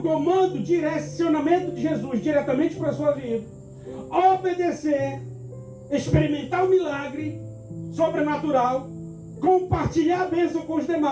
comando, direcionamento de Jesus diretamente para a sua vida, obedecer, experimentar o milagre sobrenatural, compartilhar a bênção com os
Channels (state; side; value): identical; both; correlation 1.00